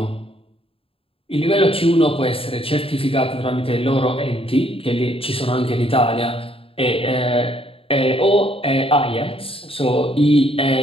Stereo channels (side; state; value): right; late; 0.27 ms